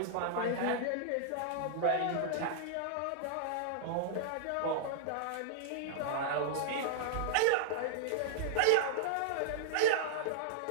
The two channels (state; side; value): different; both; correlation -0.01